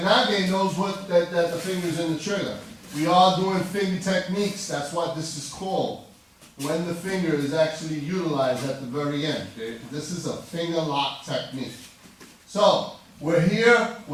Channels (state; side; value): identical; both; correlation 1.00